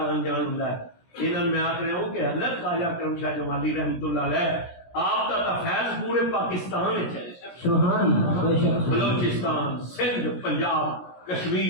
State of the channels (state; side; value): late; right; 17 ms